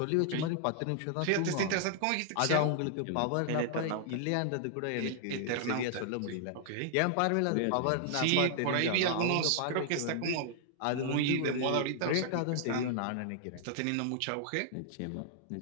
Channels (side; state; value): both; different; correlation -0.01